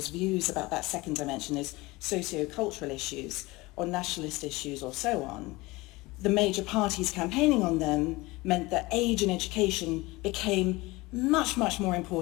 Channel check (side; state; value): right; quieter; 21.9 dB